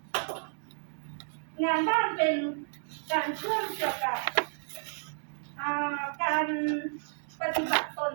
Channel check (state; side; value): silent; left; digital silence